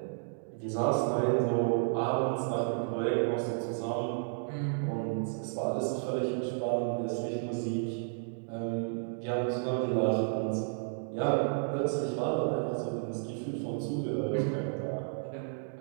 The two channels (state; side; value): silent; left; digital silence